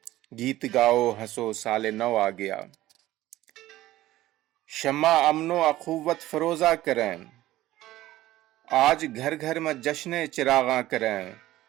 گیت گاؤ، ہنسو، سال نو آ گیا۔ شمع امن و اخوت فروزہ کریں، آج گھر گھر میں جشن چراغاں کریں،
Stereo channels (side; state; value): left; quieter; 15.6 dB